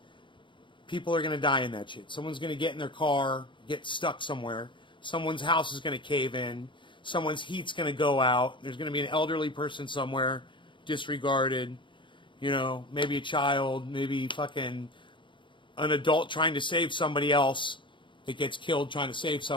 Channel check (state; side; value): late; right; 0.24 ms